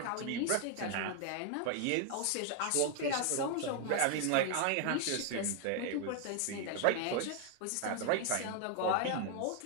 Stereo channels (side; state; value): both; different; correlation 0.00